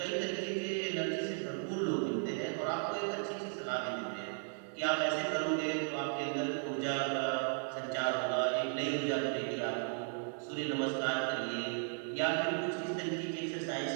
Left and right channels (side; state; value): left; silent; 54 dB below the other